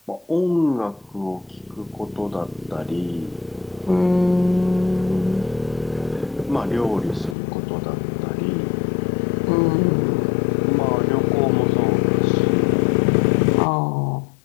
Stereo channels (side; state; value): right; drops out; at 7.4 s